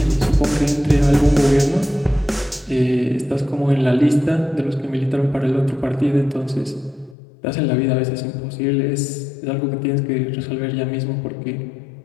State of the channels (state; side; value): drops out; right; at 7.2 s